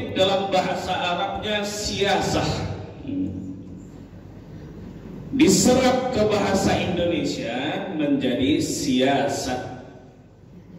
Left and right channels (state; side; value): identical; both; correlation 1.00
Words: Dalam bahasa Arabnya siasah, diserap ke bahasa Indonesia menjadi siasat.